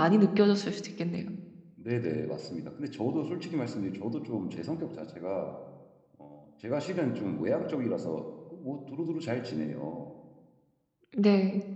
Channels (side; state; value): both; identical; correlation 1.00